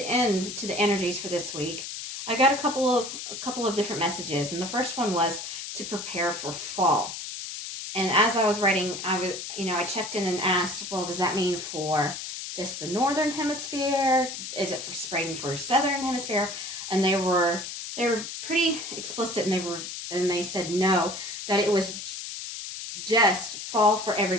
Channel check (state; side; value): noise; left; hiss, 8 dB below the sound